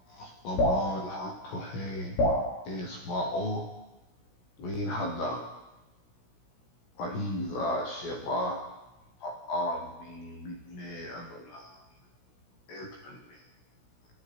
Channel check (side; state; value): right; late; 16 ms